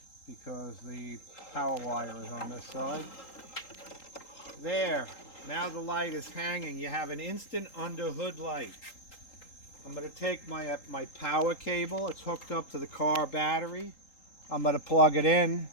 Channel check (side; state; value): right; late; 3.8 ms